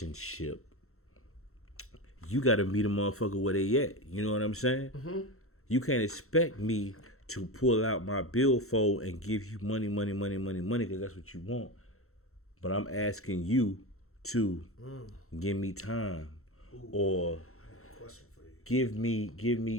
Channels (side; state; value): right; late; 0.63 ms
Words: you got to meet a motherfucker where they at. You know what I'm saying? Mm-hmm. You can't expect me to pull out my billfold and give you money, because that's what you want. But I'm asking you to give me time. Ooh. Or give me,